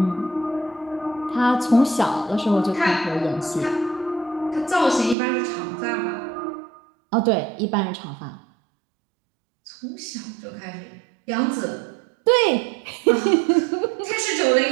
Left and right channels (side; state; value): left; drops out; at 5.2 s